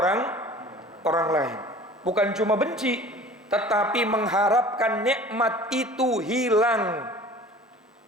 lain. Bukan cuma benci, tetapi mengharapkan nikmat itu hilang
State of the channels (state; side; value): normal; both; correlation 0.44